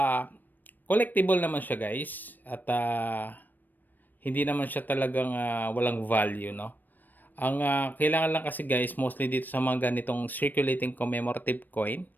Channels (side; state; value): right; late; 0.089 ms